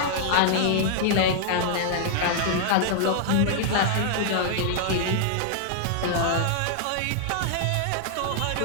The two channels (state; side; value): different; both; correlation -0.01